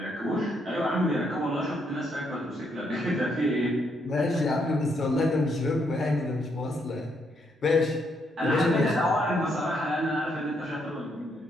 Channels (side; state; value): both; normal; correlation 0.75